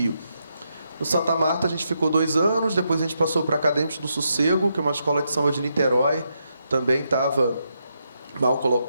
No Santa Marta a gente ficou 2 anos, depois a gente passou para Acadêmicos do Sossego, que é uma escola de samba de Niterói, também estava mal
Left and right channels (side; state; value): both; inverted; correlation -0.81